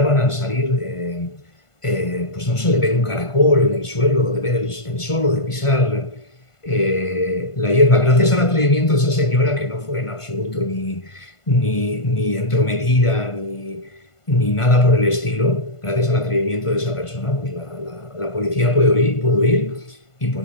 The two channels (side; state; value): right; late; 1.5 ms